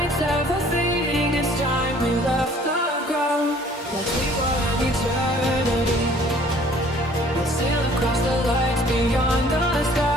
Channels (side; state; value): both; normal; correlation 0.55